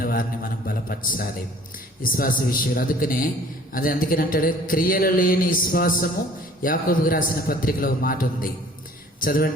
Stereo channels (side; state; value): both; normal; correlation 0.52